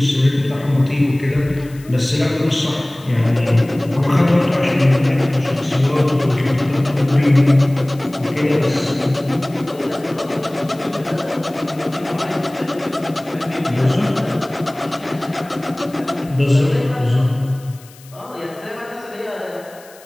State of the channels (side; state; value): left; noise; hiss, 24 dB below the sound